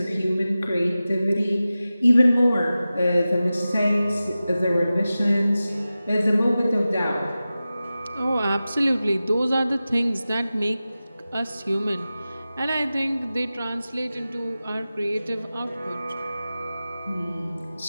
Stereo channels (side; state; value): both; inverted; correlation -0.95